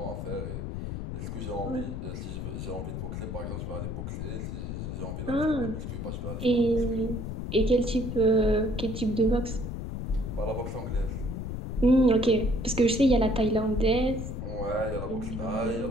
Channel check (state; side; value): noise; left; rumble, 5 dB below the sound